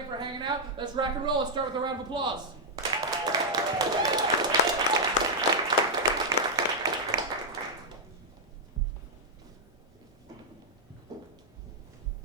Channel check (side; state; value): both; normal; correlation -0.04